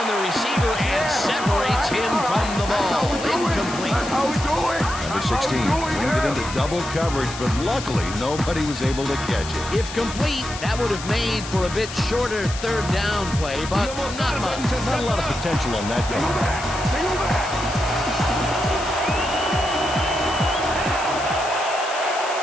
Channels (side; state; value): left; noise; hiss, 11 dB below the sound